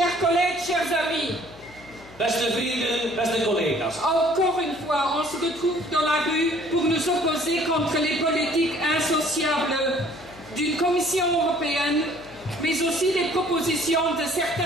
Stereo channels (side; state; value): left; noise; hum, 22 dB below the sound